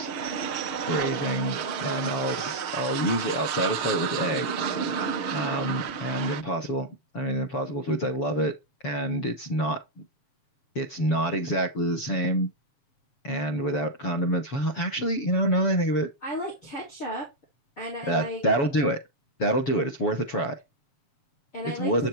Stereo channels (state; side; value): late; right; 7.3 ms